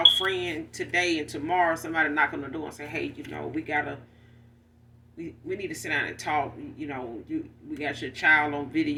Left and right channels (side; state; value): both; identical; correlation 1.00